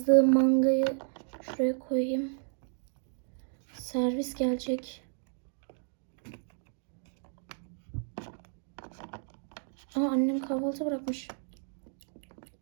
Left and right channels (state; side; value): silent; left; 56 dB below the other